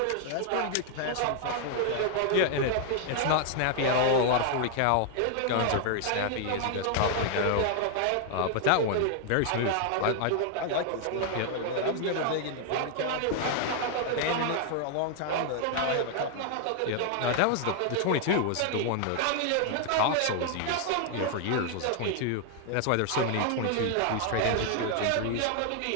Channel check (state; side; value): different; both; correlation 0.00